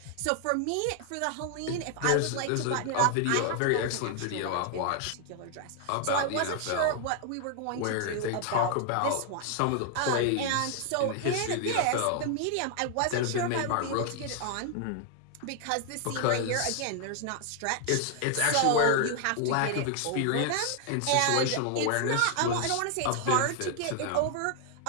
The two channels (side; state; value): both; different; correlation 0.00